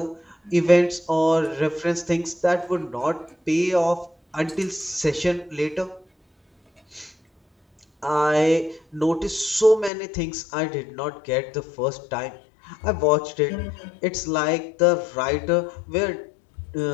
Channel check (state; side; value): drops out; right; at 9.9 s